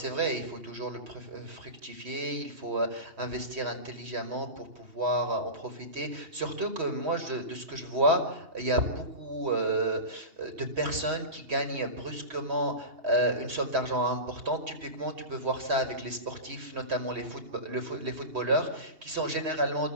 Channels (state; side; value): late; left; 2.8 ms